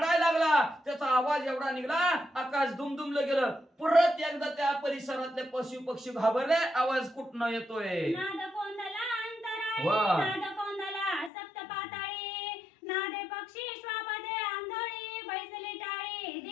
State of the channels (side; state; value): right; drops out; at 11.3 s